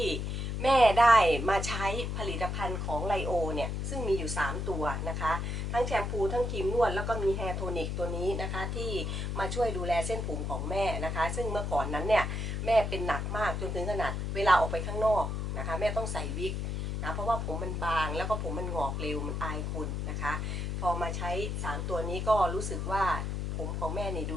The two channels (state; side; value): noise; left; hum, 2 dB below the sound